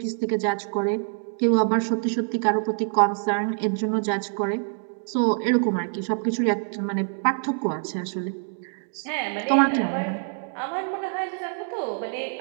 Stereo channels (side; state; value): left; silent; 61 dB below the other